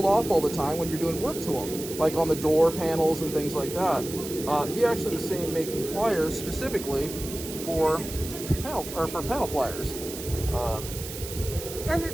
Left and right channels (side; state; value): right; noise; hiss, 10 dB below the sound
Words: off all the time when you're doing work to them, like on the door panels and things like that. He actually was saying making pliers specifically for panel pliers. And